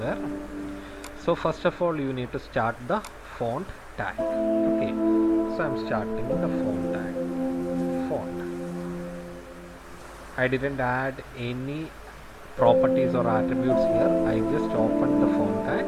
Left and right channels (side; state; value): both; identical; correlation 1.00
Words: So first of all you need to start the font tag. Okay, so I'm starting the font tag, font. I didn't add any properties or attributes here, I just opened the font tag,